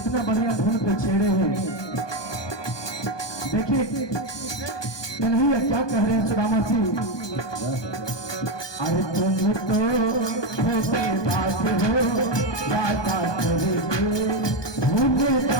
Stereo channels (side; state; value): right; late; 1.2 ms